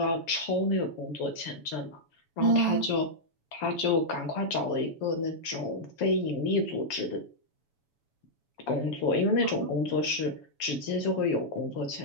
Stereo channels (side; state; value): right; late; 7.1 ms